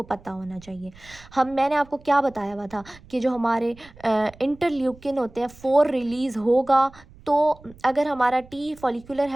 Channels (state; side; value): noise; right; rumble, 23 dB below the sound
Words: पता होना चाहिए। मैंने आपको क्या बताया हुआ था कि जो हमारे इंटरल्यूकिन होते हैं 4 रिलीज़ होगा, तो अगर हमारा टी फॉलिकुलर